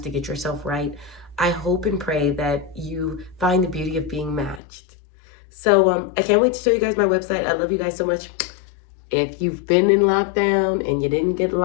to get yourself right, I hope and pray that you find the beauty of being matched. So I can't wait to show you guys my website. I love you guys so much. If you've been in lockdown and you didn't get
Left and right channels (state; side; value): drops out; right; at 4.6 s